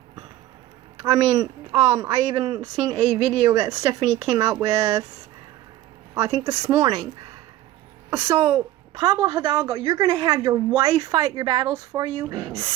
I mean, I even seen a video that Stephanie came out with, I think this morning. So, Pablo Hidalgo, you're going to have your wife fight your battles for you?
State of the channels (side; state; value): left; quieter; 14.4 dB